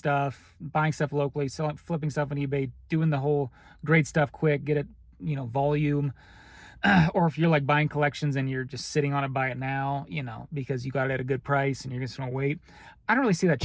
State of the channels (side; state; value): both; identical; correlation 1.00